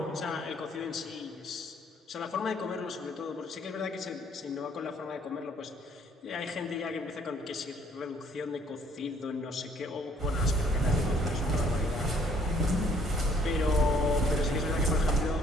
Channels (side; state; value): both; normal; correlation 0.62